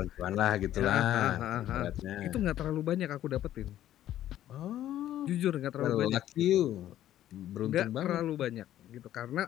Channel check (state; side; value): quieter; right; 12.5 dB